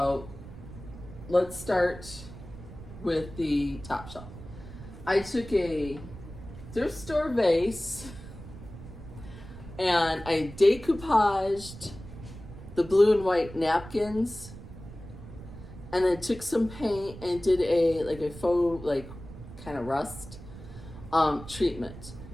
let's start with the top shelf. I took a thrift store vase and I decoupaged the blue and white napkins, and then took some paint and did a faux kind of rust treatment.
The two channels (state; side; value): noise; right; rumble, 14 dB below the sound